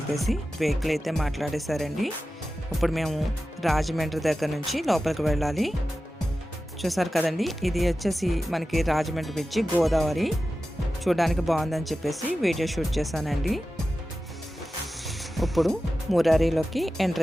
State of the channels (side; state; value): both; normal; correlation 0.94